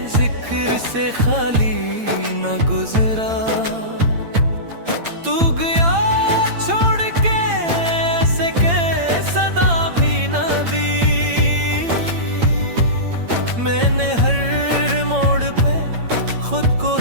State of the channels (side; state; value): left; late; 8.8 ms